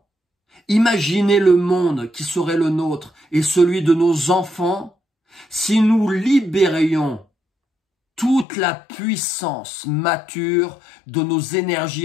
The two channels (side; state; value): right; drops out; at 8.5 s